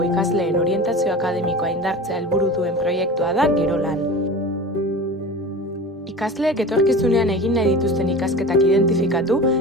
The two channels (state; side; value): normal; both; correlation 0.33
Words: ikasleen orientazio akademikoa indartzea helburu duen proiektua da Gero Lan. Ikasleek etorkizunean egin nahi dituzten ikasketak identifikatu